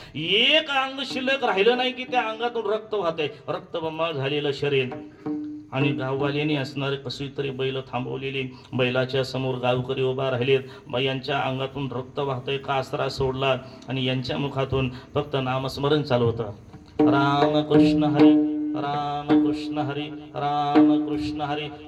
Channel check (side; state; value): both; identical; correlation 1.00